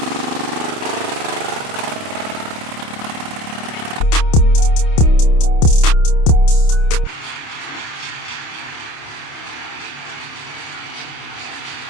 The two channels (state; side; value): late; right; 28 ms